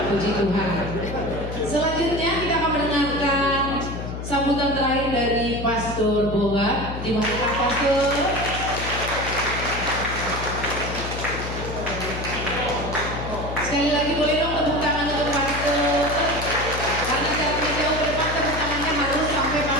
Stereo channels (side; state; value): left; noise; hum, 7 dB below the sound